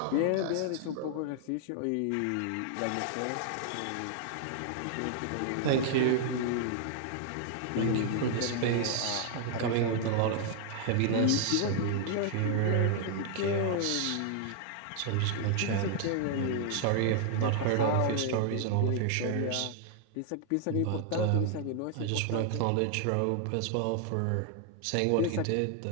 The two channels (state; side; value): different; both; correlation 0.00